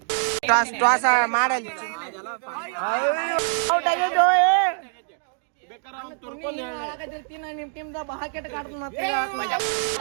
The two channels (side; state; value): left; silent; digital silence